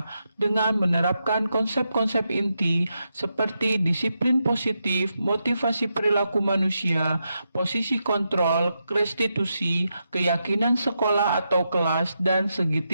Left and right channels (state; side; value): inverted; both; correlation -0.85